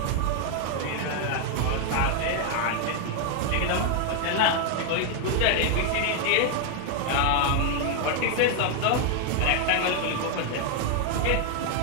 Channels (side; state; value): both; different; correlation 0.00